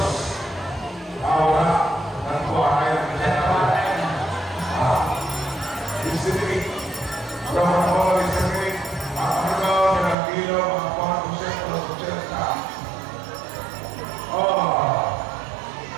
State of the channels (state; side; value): drops out; left; at 10.2 s